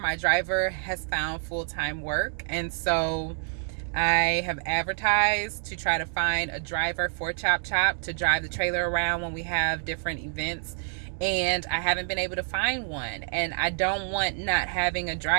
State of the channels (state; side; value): silent; left; digital silence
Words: driver has found full-time work, and so I have advertised to try to find a driver for Chop Chop to drive the trailer around when we have different events. And I haven't been able to find one. And I don't want not having a